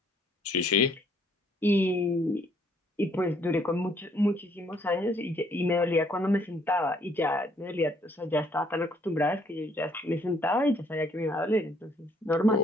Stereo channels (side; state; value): both; normal; correlation 0.66